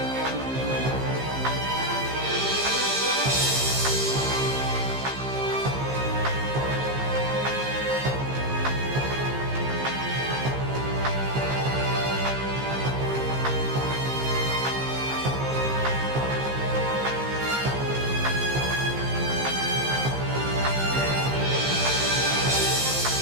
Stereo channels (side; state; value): left; late; 15 ms